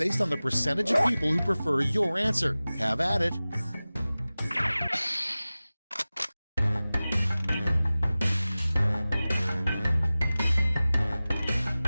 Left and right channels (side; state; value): both; inverted; correlation -0.97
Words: on the percentage of people who prefer your answer. Have at it.